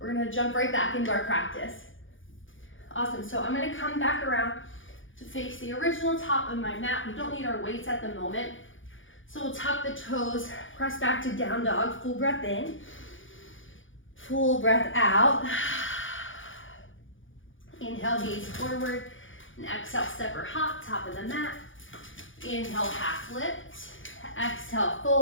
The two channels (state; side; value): late; right; 0.57 ms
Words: gonna jump right back into our practice. Awesome, so I'm gonna come back around to face the original top of my mat. We don't need our weights at the moment. So we'll tuck the toes, press back to down dog, full breath in, full breath out. Inhale, gaze forward, and exhale, step or hop, top of the mat. Inhale, half lift, exhale,